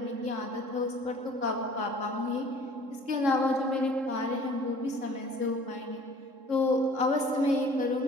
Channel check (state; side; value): late; left; 3.7 ms